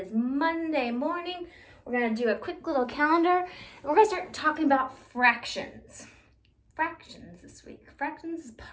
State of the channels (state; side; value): identical; both; correlation 1.00